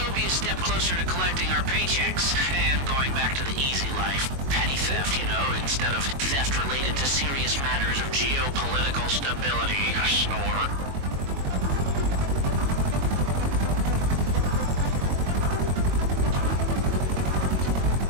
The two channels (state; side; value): late; left; 22 ms